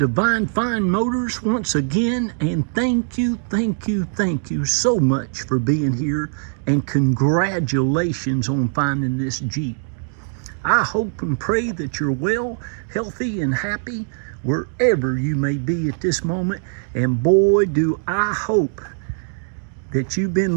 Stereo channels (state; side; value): silent; left; digital silence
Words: Fine Motors once again, and thank you so much for being here, and congratulations on finding this Jeep. I hope and pray that you're well, healthy, and happy wherever you may be at this moment, and boy do I hope that you've